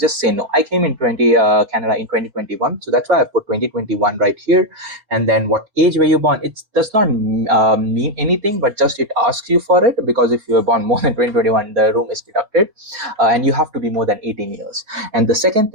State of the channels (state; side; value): late; left; 4.4 ms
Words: say no. I came in Canada in 2021, so that's why I put 2021 right here. And then what age were you born? It does not mean anything, but just it asks you for it, because if you were born more than 2021, the room is deducted, and you have to be more than 18 years. And the second